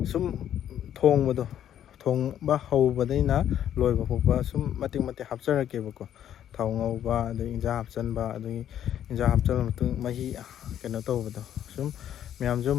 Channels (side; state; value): right; quieter; 10.5 dB